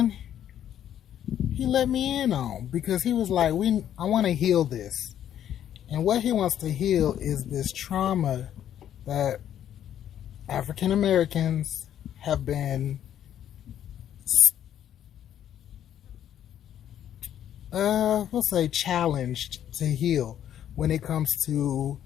he let me in on because he was like, I want to heal this. And what he wants to heal is this trauma that African Americans have been, we'll say, challenged to heal when it comes to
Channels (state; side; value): quieter; right; 10.5 dB